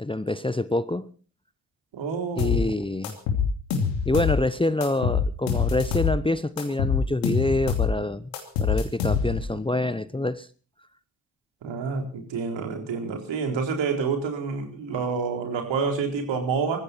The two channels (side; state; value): both; normal; correlation 0.49